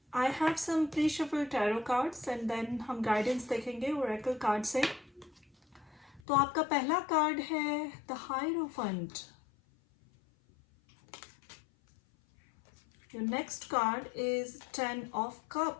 I have some pre shuffle tarot cards and then हम गाइडेंस देखेंगे ओरेकल कार्ड से। तो आपका पहला कार्ड है the hierophant. Your next card is 10 of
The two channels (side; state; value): right; drops out; at 6.2 s